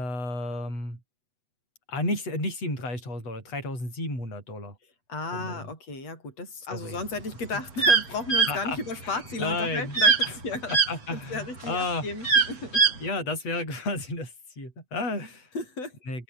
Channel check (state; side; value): late; right; 8.0 ms